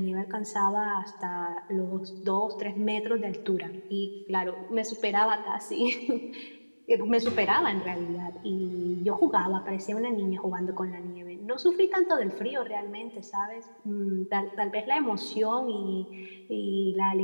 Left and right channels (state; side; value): inverted; both; correlation -1.00